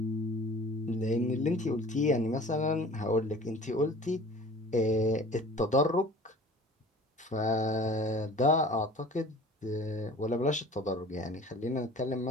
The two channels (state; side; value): normal; both; correlation 0.45